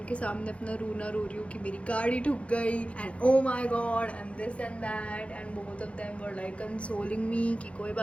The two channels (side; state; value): right; late; 0.062 ms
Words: सामने अपना रोना रो रही हूँ कि मेरी गाड़ी ठुक गई and oh my God and this and that, and both of them were like consoling me कि कोई